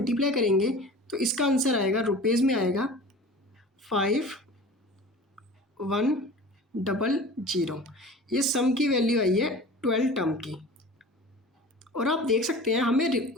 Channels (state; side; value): normal; both; correlation 0.39